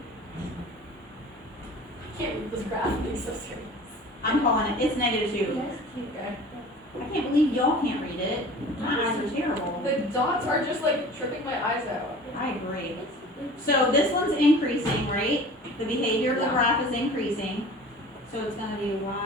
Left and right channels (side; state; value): both; normal; correlation 0.42